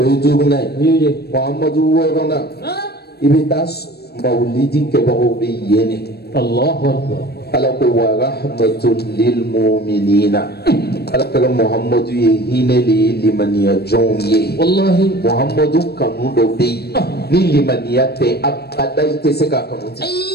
ye duguna ye muhamadu wɔɔrɔnan i bɛ taa mawulidi kɛbagaw bɛ yen de ala ko wa rahmatun lil mu'minina ala kɛra muhamadu ye hinɛ de ye limaniya jɔnw ye muhamadu kanu dɔ bɛ yen ni limaniya tɛ abada i tɛ se k'a kanu ten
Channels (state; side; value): late; right; 0.47 ms